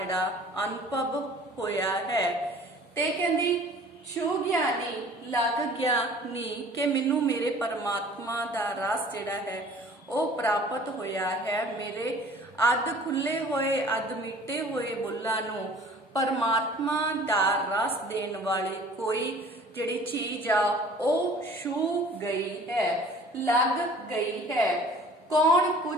ਅਨੁਭਵ ਹੋਇਆ ਹੈ ਤੇ ਕਹਿੰਦੀ ਛੂ ਗਿਆਨੀ ਲੱਗ ਗਿਆ ਨੀ ਕਿ ਮੈਨੂੰ ਮੇਰੇ ਪਰਮਾਤਮਾ ਦਾ ਰਸ ਜਿਹੜਾ ਹੈ ਉਹ ਪ੍ਰਾਪਤ ਹੋਇਆ ਹੈ। ਮੇਰੇ ਅੱਧ ਖੁੱਲੇ ਹੋਏ ਅੱਧ ਮਿੱਟੇ ਹੋਏ ਬੁੱਲਾਂ ਨੂੰ परमात्मा दा रस देने वाली कोई जिहड़ी चीज आ ओ छू गई है, लग गई है। कौन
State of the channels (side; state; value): both; normal; correlation 0.49